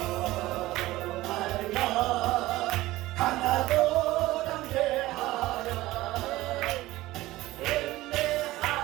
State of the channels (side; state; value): left; quieter; 17.6 dB